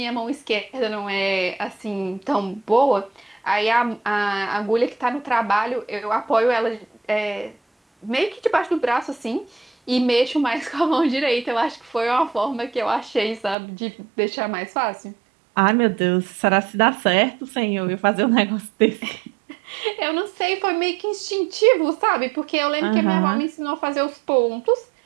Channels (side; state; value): left; drops out; at 13.6 s